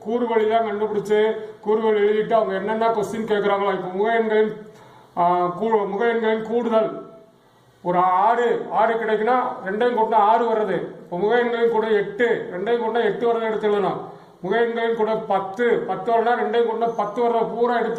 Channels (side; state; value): both; identical; correlation 1.00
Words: கூறுவழி தான் கண்டுபிடிச்சு கூறுவழி எழுதிட்டு அவங்க என்னென்ன கொஸ்டின் கேட்கறாங்களோ. இப்போ முக எண்களின் கூடுதல் ஒரு 6 கிடைக்குன்னா 2 கூட்டினா 6 வர்றது. இப்போ முக எண்களின் கூட 8, 2 கூட்டினா 8 வரதை எடுத்து எழுதணும். முக எண்களின் கூட 10 வரனா 2 கூட்டினா 10 வரதை பூரா